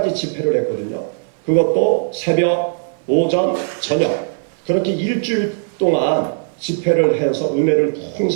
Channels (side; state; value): left; silent; 57 dB below the other